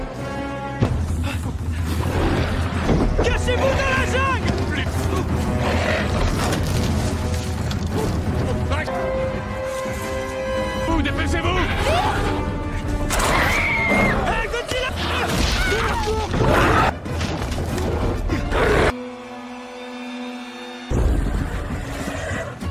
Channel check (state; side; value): identical; both; correlation 1.00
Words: Cachez-vous dans la jungle! Vous, dépêchez-vous! Hey, Godzilla!